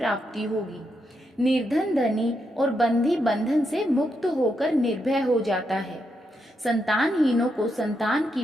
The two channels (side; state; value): both; normal; correlation 0.82